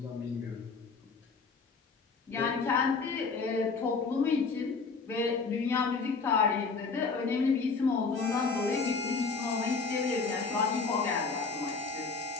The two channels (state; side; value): quieter; right; 4.6 dB